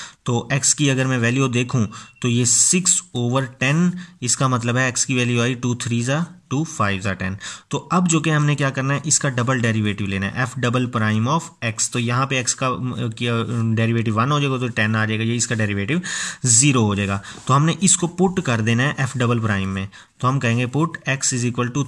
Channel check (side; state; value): both; identical; correlation 1.00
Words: तो x की अगर मैं वैल्यू देखूं तो ये 6/10, इसका मतलब है x की वैल्यू आई 2 3 ज़ा 2 5 ज़ा 10। तो अब जो कि हमने क्या करना है, इसका डबल डेरिवेटिव लेना है, f double prime of x। तो यहाँ पे x का डेरिवेटिव 1 हो जाएगा, तो 10 आ जाएगा, ये इसका डेरिवेटिव 0 हो जाएगा। तो हमने इसको पुट कर देना है f डबल प्राइम में। तो हम कहेंगे put x is equal to